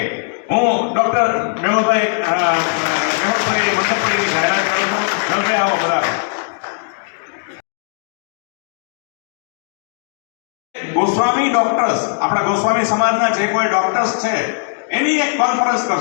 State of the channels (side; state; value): right; silent; digital silence